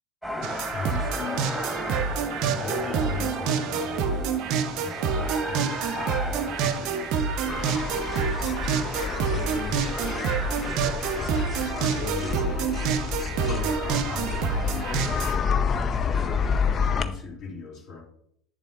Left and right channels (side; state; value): both; normal; correlation 0.36